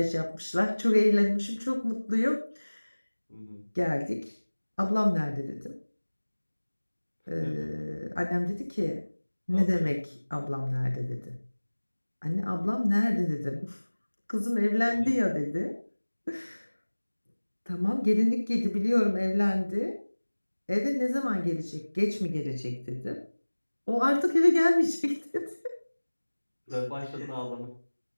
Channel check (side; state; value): both; inverted; correlation -1.00